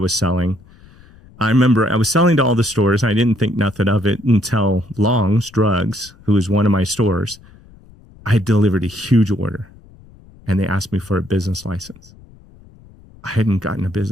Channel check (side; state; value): left; noise; rumble, 24 dB below the sound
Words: selling. I remember I was selling to all the stores. I didn't think nothing of it until Long's Drugs, who was one of my stores. I had delivered a huge order, and they asked me for a business license. I hadn't gotten a